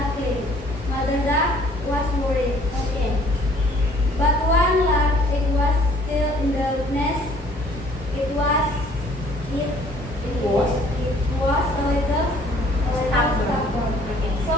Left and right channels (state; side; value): normal; both; correlation 0.57